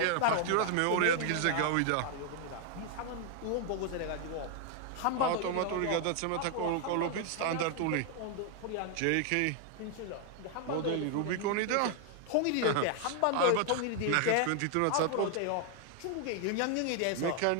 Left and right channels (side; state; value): both; different; correlation 0.00